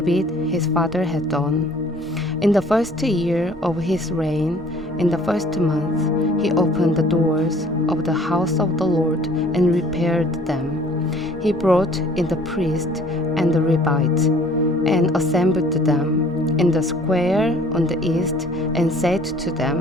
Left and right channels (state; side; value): normal; both; correlation 0.54